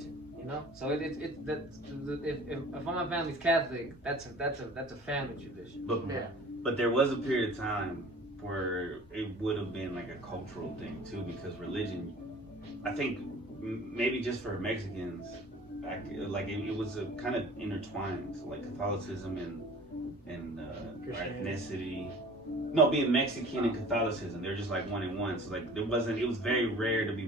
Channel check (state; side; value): normal; both; correlation 0.45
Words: you know. So if my family's Catholic, that's a family tradition. But there was a period of time where it would have been like a cultural thing too, because religion, I think maybe just for Mexicans, like it was a kind of intertwined, so like Catholicism and our ethnicity. No, being Mexican and Catholicism, they're just like one in one. So like it was very rare to be